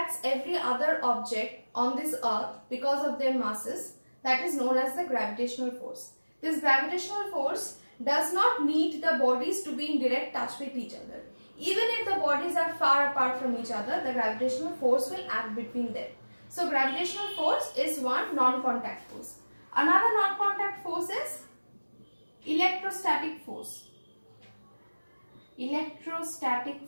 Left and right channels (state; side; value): inverted; both; correlation -1.00